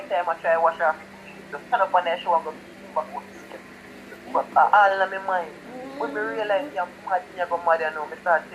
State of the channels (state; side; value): identical; both; correlation 1.00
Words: times I try wash off the stand up on that show, I go back out to sleep. But all in my mind, when me realize I'm mad, me go mad, you know, me start